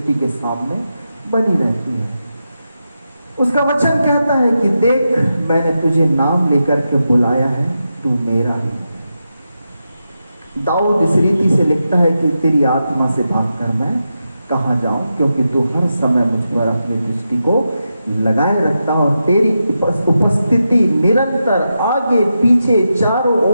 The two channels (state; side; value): inverted; both; correlation -0.88